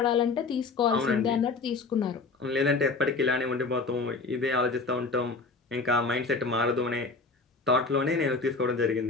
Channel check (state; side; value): quieter; right; 4.0 dB